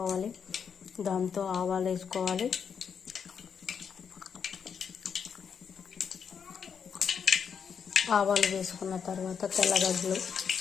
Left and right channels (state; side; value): quieter; right; 7.0 dB